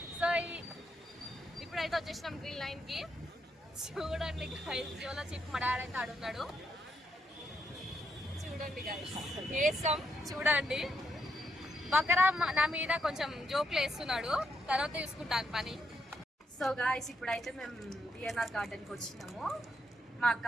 సో ఇప్పుడైతే వచ్చేసినాం గ్రీన్ లైన్ కి. చూడండి గైస్, జోలో చెప్పి మా డాడీ అయితే ఆడున్నాడు. చూడండి గైస్, వేసాం చూడండి. బకరా నా మీద కొంచెం జోక్లు వేస్తున్నాడు, తర్వాత చూసుకుంటాను పని. సో గాయస్, ఇప్పుడైతే మేము బిఎన్ఆర్ గార్డెన్కి వచ్చినాము. మా అక్క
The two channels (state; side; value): normal; both; correlation 0.79